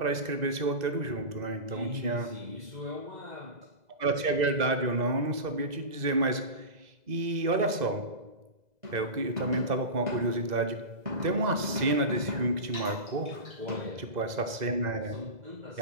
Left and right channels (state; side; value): late; left; 2.0 ms